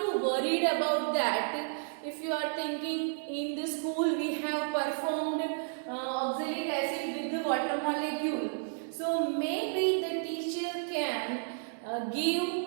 worried about that. If you are thinking in the school we have performed oxalic acid with the water molecule, so maybe the teacher can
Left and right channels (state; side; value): silent; left; digital silence